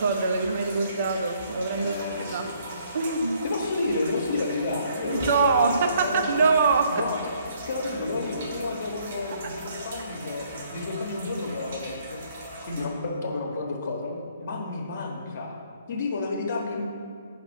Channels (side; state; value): both; inverted; correlation -0.65